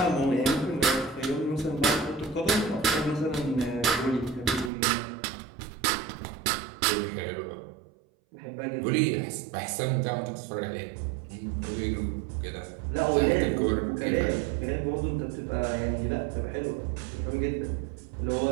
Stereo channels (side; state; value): left; drops out; at 4.7 s